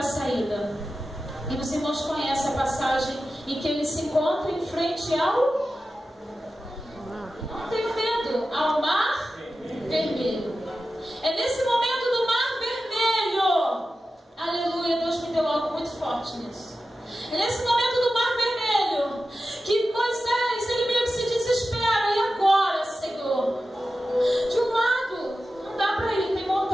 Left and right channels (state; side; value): normal; both; correlation 0.93